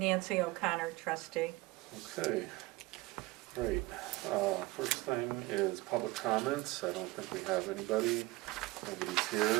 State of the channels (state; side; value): quieter; left; 20.7 dB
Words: O'Connor, trustee. okay, great. First thing is public comments. I don't think we have anybody. Nobody's